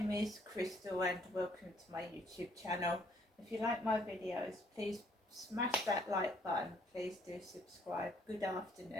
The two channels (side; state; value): both; normal; correlation 0.65